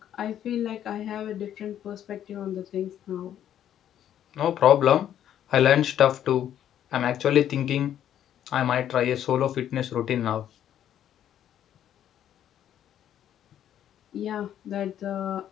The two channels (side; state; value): right; quieter; 10.6 dB